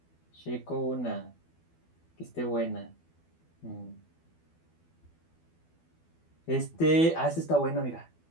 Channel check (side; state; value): right; late; 12 ms